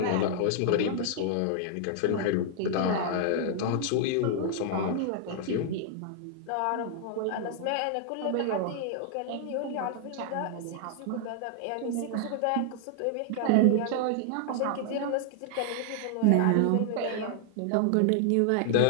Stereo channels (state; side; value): different; both; correlation -0.01